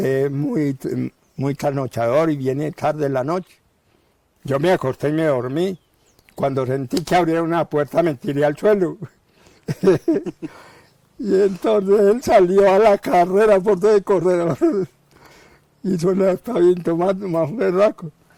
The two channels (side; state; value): both; identical; correlation 1.00